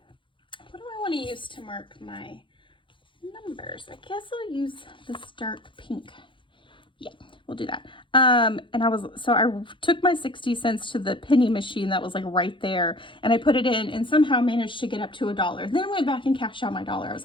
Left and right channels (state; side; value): late; right; 0.24 ms